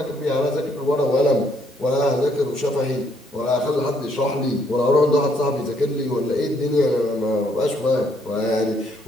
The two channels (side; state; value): both; normal; correlation 0.70